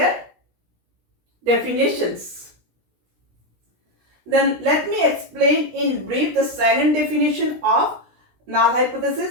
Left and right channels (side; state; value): left; late; 17 ms